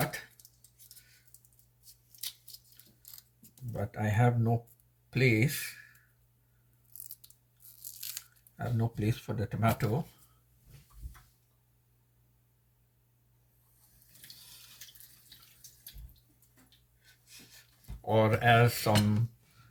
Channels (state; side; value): identical; both; correlation 1.00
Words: but I have no place. I have no place for the tomato. Or as some